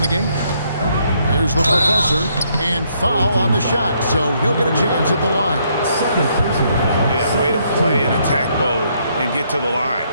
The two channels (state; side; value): inverted; both; correlation -0.71